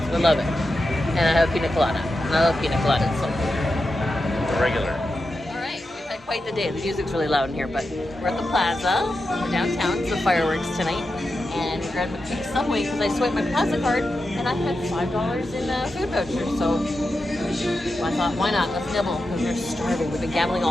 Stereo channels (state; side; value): normal; both; correlation 0.89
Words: We love it. And I have a pina colada. And I love pina coladas, so. The regular. Quite the day. The music's really loud in here, but we're at the Plaza. We're downtown. It's the fireworks tonight. And we grabbed a quick Subway because I swiped my Plaza card and I had $5 in food vouchers. So I thought, why not? Let's nibble because we're starving. We've been gambling